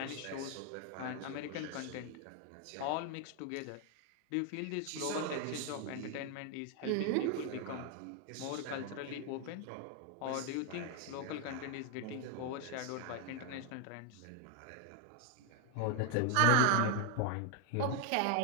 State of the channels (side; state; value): both; different; correlation 0.00